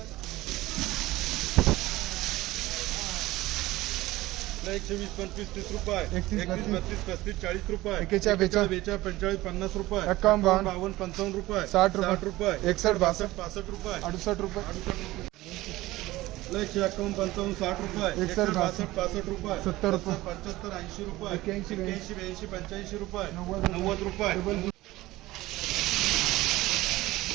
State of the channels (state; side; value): quieter; left; 18.0 dB